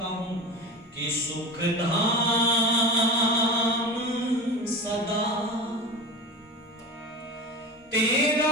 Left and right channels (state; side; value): normal; both; correlation 0.28